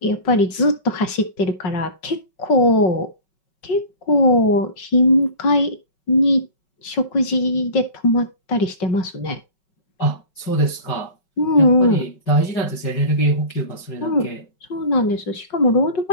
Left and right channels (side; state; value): right; late; 5.3 ms